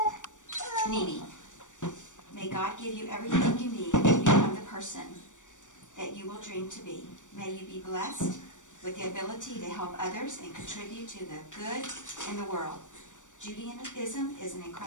Nene, may God give you everything you need to become the person that you will dream to be. May you be blessed with the ability to help others and contribute to the good in the world. Judaism is an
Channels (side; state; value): right; late; 0.86 ms